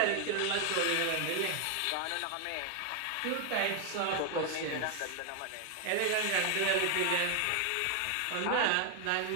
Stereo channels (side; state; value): both; different; correlation 0.00